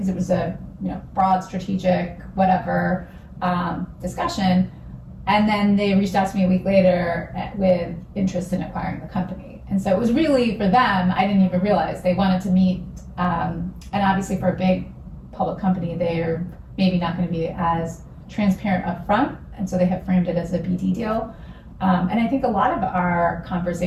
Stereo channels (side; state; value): both; identical; correlation 1.00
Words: it was a broad strategic whatever discussion. And then they reached out to me a week later with interest in acquiring the company. And so it was really for them, I didn't even realize they wanted to meet. And obviously for a big public company, they're maybe not going to be as transparent up front. And so they have framed it as a BD deal. And I think a lot of our